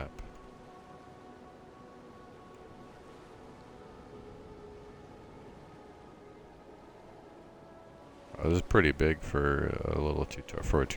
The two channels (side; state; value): both; identical; correlation 1.00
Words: Oh, this is pretty big for a little